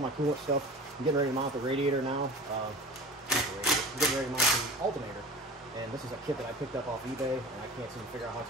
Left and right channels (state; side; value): normal; both; correlation 0.37